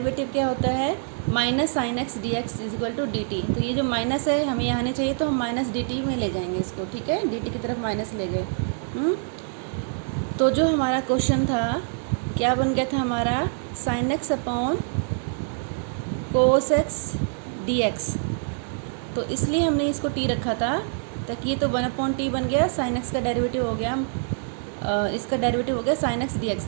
क्या होता है, minus sine x d x is equal to d t. तो ये जो माइनस है हमें यहाँ नहीं चाहिए, तो हम माइनस डी टी में ले जाएंगे इसको, ठीक है। डी टी की तरफ माइनस ले गए। तो जो हमारा क्वेश्चन था क्या बन गया था हमारा, sign x upon cos x d x. तो इसलिए हमने इसको टी रखा था, ताकि ये तो 1/t बन गया, साइन एक्स का डेरिवेटिव हो गया, इसका डेरिवेटिव हो गया साइन एक्स डी एक्स।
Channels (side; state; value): left; silent; 57 dB below the other